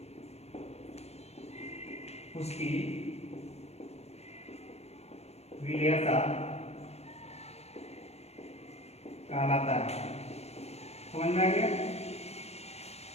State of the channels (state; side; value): late; right; 0.31 ms